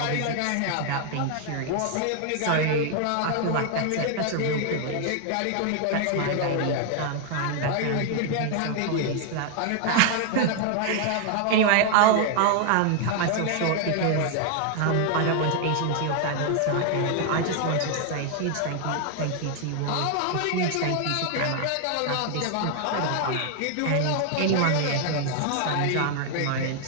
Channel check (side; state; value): both; different; correlation 0.00